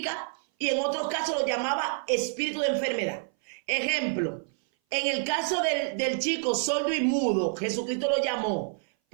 y en otros casos lo llamaba espíritu de enfermedad. Ejemplo, en el caso del chico sordo y mudo, Jesucristo lo llamó,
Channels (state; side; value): silent; left; 57 dB below the other